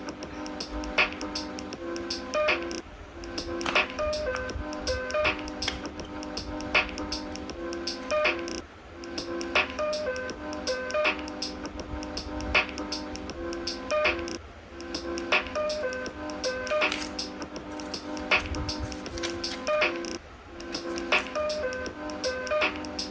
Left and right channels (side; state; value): both; identical; correlation 1.00